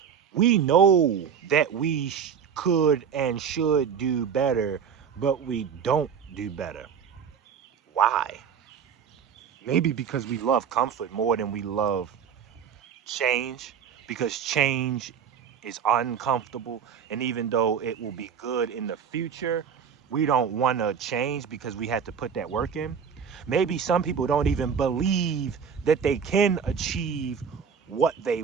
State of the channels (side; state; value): left; quieter; 7.2 dB